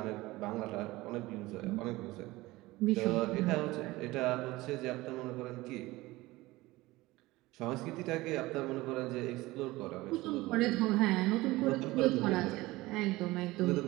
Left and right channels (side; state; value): left; quieter; 19.5 dB